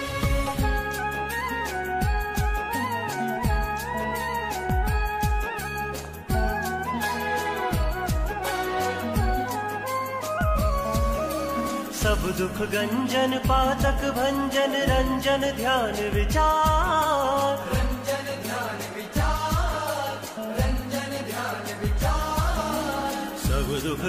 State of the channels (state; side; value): identical; both; correlation 1.00